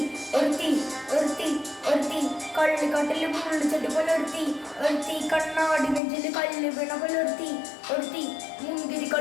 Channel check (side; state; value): right; drops out; at 6.0 s